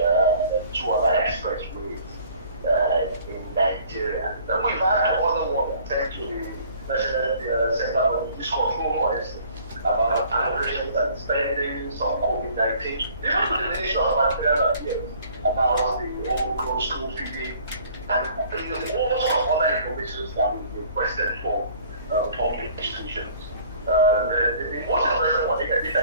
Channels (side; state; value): both; inverted; correlation -0.54